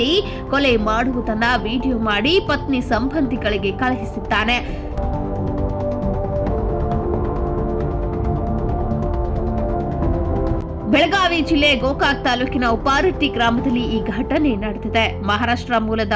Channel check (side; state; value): both; identical; correlation 1.00